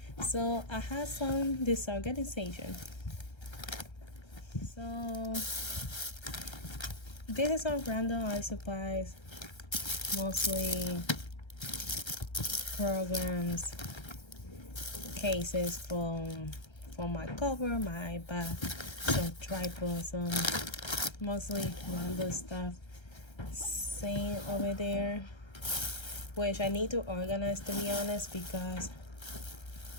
So I have some disorganization. So this is some random art supplies, mostly programs, cases for my cover, my iPad, some tripods, some mostly random stuff. Same over there, which I need to organize, to be honest, because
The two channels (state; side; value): late; right; 1.3 ms